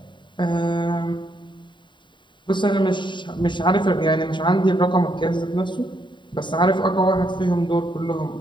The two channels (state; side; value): late; right; 0.23 ms